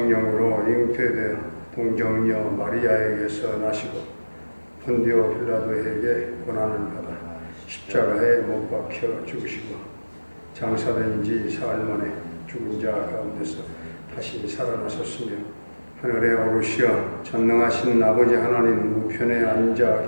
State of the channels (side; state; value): both; inverted; correlation -1.00